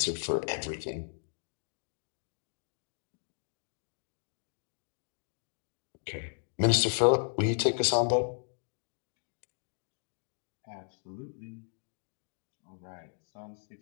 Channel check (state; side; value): silent; right; digital silence